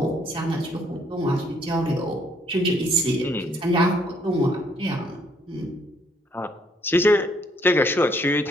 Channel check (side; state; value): both; normal; correlation 0.67